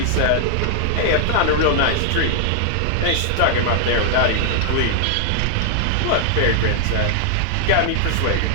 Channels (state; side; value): different; both; correlation -0.01